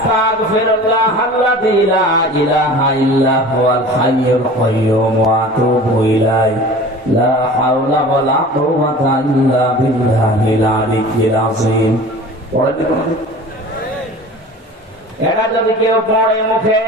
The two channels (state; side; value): normal; both; correlation 0.40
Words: আল্লাযী লা ইলাহা ইল্লা হুয়াল হাইয়ুল কাইয়্যুম ওয়া আতুবু ইলাইহি লা হাওলা ওয়া লা কুওয়াতা ইল্লা বিল্লাহিল আলিয়্যিল আযীম। এটা যদি কেউ পড়ে মুখে,